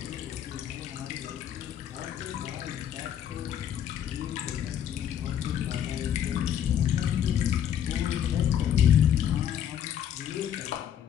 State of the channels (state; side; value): quieter; right; 9.6 dB